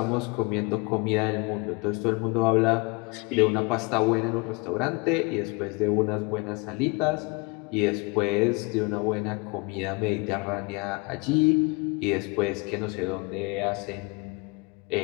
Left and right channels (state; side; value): quieter; right; 28.3 dB